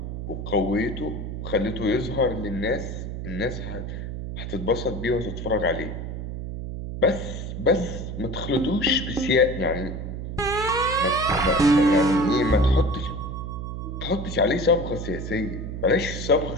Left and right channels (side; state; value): right; noise; hum, 6 dB below the sound